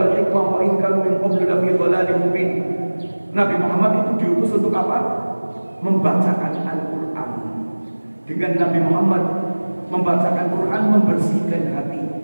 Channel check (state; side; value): inverted; both; correlation -1.00